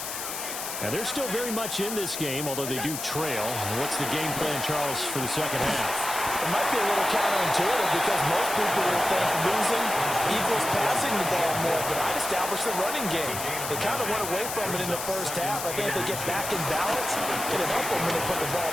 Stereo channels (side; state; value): left; noise; hiss, 6 dB below the sound